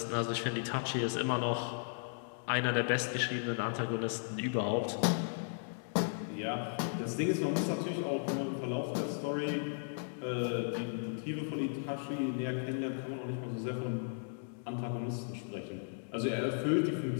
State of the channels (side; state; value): right; silent; digital silence